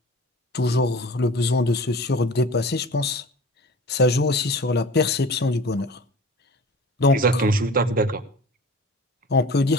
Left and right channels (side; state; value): both; normal; correlation 0.40